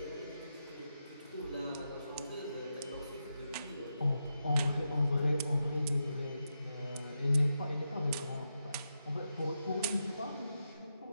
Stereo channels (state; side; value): inverted; both; correlation -0.87